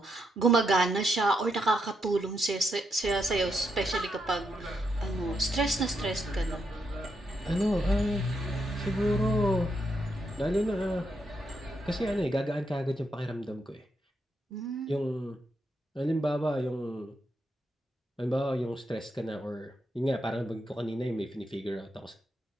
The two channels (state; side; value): normal; both; correlation 0.80